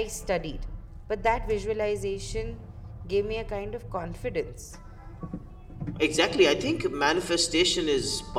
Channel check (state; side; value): identical; both; correlation 1.00